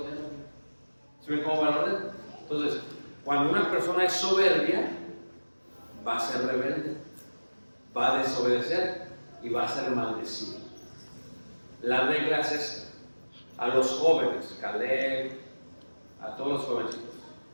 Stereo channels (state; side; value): inverted; both; correlation -1.00